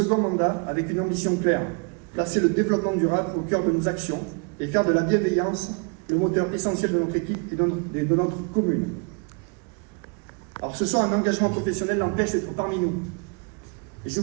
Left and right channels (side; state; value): left; quieter; 34.8 dB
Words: mandat avec une ambition claire, placer le développement durable au cœur de nos actions et faire de la bienveillance le moteur essentiel de notre équipe et de notre commune. Alors ce soir, un engagement professionnel l'empêche d'être parmi nous. Et je